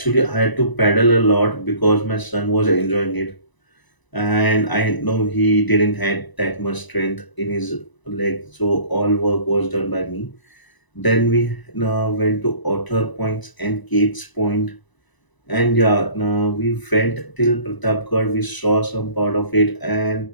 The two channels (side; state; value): right; late; 1.0 ms